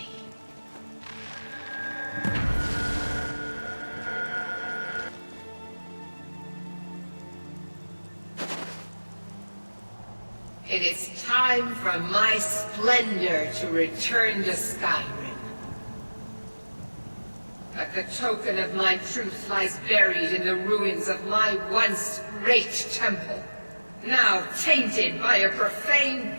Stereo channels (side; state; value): both; inverted; correlation -1.00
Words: It is time for my splendor to return to Skyrim. But the token of my truth lies buried in the ruins of my once great temple, now tainted by a profane